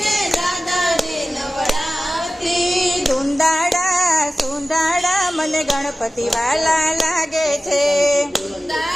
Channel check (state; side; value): normal; both; correlation 0.96